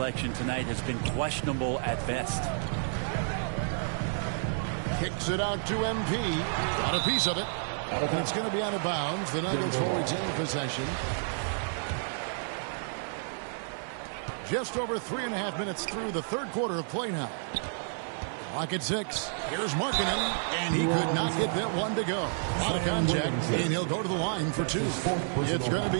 tonight has been questionable at best. Kicks it out to MP. Got a piece of it. And it's going to be out of bounds. The Nuggets will retain possession. Just over 3.5 minutes through the 3rd quarter of play now. Clock at 6. Here's Markkanen, and he could not get that one to go. A lot of contact, and he'll go to the line for 2. It's going to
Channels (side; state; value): left; silent; 58 dB below the other